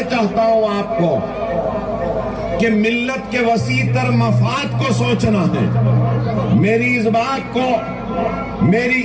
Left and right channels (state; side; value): identical; both; correlation 1.00